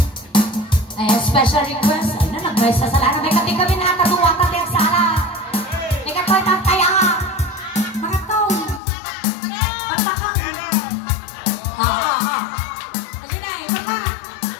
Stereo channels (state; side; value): drops out; right; at 8.8 s